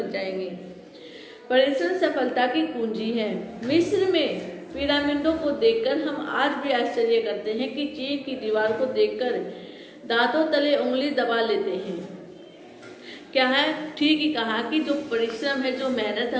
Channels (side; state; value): both; identical; correlation 1.00